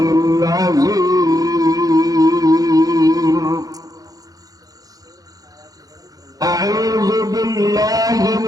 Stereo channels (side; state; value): left; late; 0.18 ms